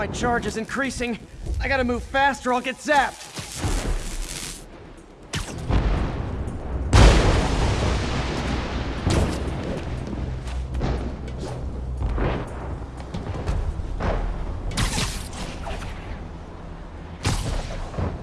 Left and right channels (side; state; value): both; identical; correlation 1.00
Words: charge is increasing. I gotta move fast or I'll get zapped.